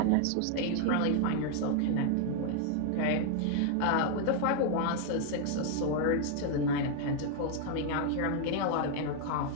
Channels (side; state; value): both; different; correlation 0.00